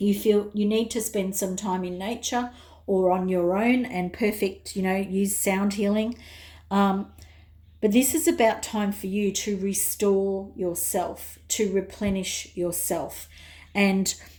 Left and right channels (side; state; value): both; identical; correlation 1.00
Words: feel you need to spend some time in nature or on your own, and perfect, use sound healing. But this is about time for you to restore yourself, to replenish yourself. And